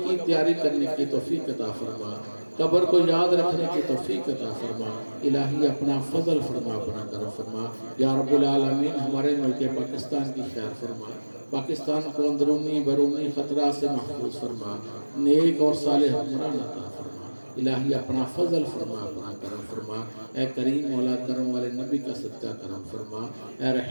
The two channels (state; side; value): inverted; both; correlation -1.00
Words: کی تیاری کرنے کی توفیق عطا فرما، قبر کو یاد رکھنے کی توفیق عطا فرما الہی۔ اپنا فضل فرما، اپنا کرم فرما یا رب العالمین۔ ہمارے ملک پاکستان کی خیر فرما، پاکستان کو اندرونی بیرونی خطرات سے محفوظ فرما، نیک اور صالح حکمران عطا فرما الہی۔ اپنا فضل فرما، اپنا کرم فرما اے کریم مولا، کرم والے نبی کا صدقہ کرم فرما اے